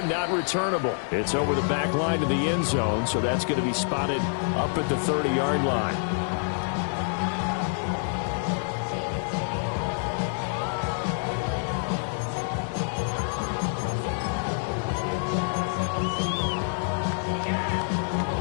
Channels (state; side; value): silent; right; 60 dB below the other